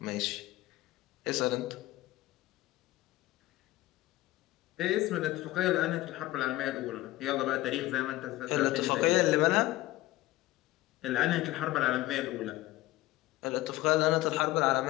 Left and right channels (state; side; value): quieter; right; 17.1 dB